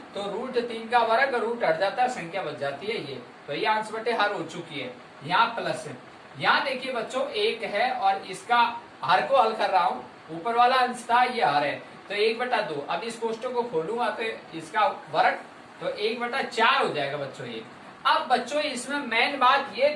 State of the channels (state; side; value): identical; both; correlation 1.00